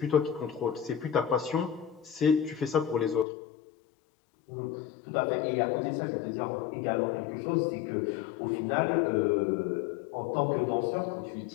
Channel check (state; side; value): drops out; right; at 3.2 s